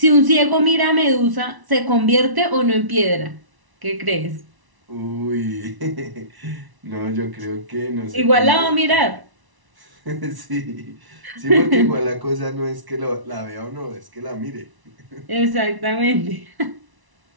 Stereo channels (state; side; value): late; left; 1.0 ms